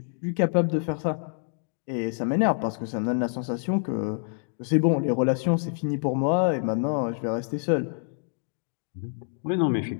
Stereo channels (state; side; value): silent; right; 60 dB below the other